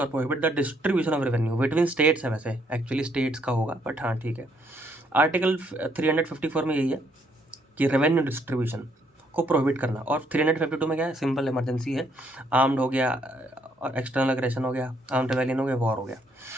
और prohibit the distribution of revenue between states है, वैसे एक्चुअली स्टेट्स का होगा, बट हाँ ठीक है। आर्टिकल 354 में यही है कि रेवेन्यू डिस्ट्रीब्यूशन को प्रोहिबिट करना, और 352 में क्या है, सिंपल इमरजेंसी है, आर्म्ड हो गया और एक्सटर्नल एग्रेशन हो गया, आर्म्ड रेवेलियन हो गया, वॉर हो गया,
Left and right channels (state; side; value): normal; both; correlation 0.70